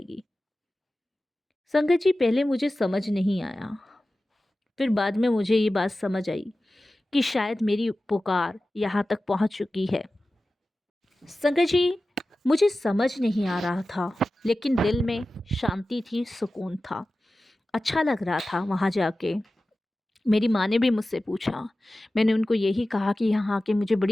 संगत जी पहले मुझे समझ नहीं आया, फिर बाद में मुझे ये बात समझ आई कि शायद मेरी पुकार यहाँ तक पहुँच चुकी है। संगत जी मुझे समझ नहीं आ रहा था, लेकिन दिल में शांति थी, सुकून था, अच्छा लग रहा था वहाँ जाके। मेरी माँ ने भी मुझसे पूछा, मैंने उनको यही कहा कि यहाँ आके मुझे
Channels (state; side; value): normal; both; correlation 0.95